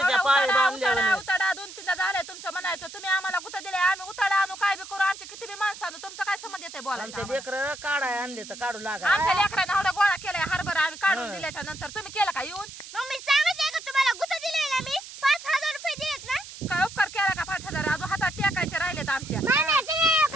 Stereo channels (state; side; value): noise; right; hiss, 14 dB below the sound